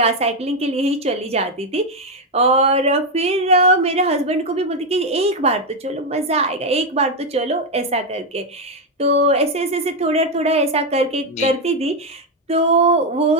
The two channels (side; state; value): both; normal; correlation 0.05